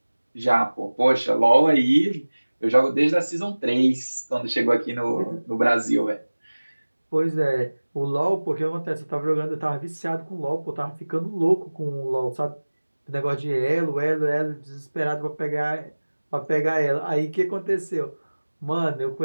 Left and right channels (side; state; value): both; inverted; correlation -1.00